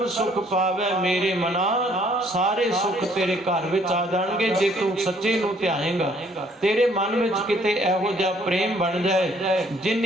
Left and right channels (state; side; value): normal; both; correlation 0.63